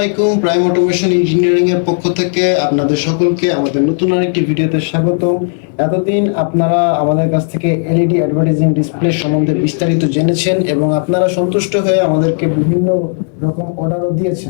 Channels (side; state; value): right; silent; 59 dB below the other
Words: প্রাইম অটোমেশন ইঞ্জিনিয়ারিং এর পক্ষ থেকে আপনাদের সকলকে আমাদের নতুন আরেকটি ভিডিওতে স্বাগত। এতদিন আপনারা আমাদের কাছ থেকে এলইডি অ্যাডভার্টাইজিং ডিসপ্লে সম্বন্ধে বিস্তারিত জেনেছেন এবং আপনারা সন্তুষ্ট হয়ে আমাদেরকে বিভিন্ন রকম অর্ডারও